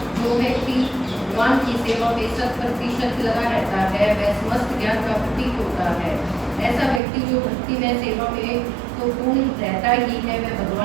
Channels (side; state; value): left; drops out; at 7.0 s